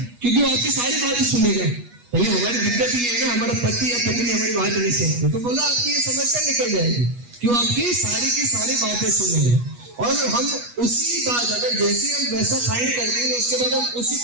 क्योंकि वो आपकी सारी बातें सुनेगा। पहले हमारी दिक्कत ये है ना, हमारा पति या पत्नी हमारी बात नहीं सुनते, तो बोला आपकी ये समस्या निकल जाएगी कि वो आपकी सारी की सारी बातें सुनेगा। और हम उसी बात अगर जैसे हम वैसा फाइंड कर देंगे उसके बाद हम उसी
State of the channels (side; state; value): left; late; 8.3 ms